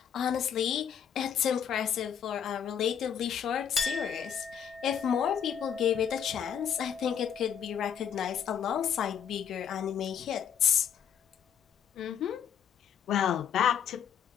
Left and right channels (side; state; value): right; quieter; 8.4 dB